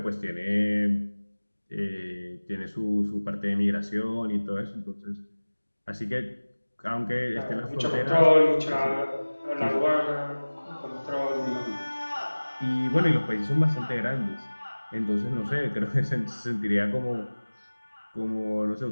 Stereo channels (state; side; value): inverted; both; correlation -1.00